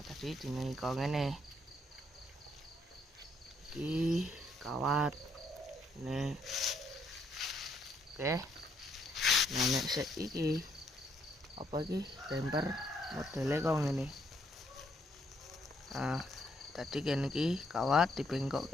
tadi dini kok ngene. Iki kawat. Nih. Oke. Nah, nek sik iki apa iki bumper modele kok ngene. Nah, tadi kene iki kawat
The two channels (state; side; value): normal; both; correlation 0.71